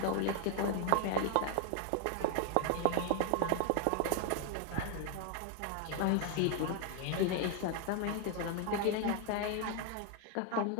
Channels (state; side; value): different; both; correlation 0.00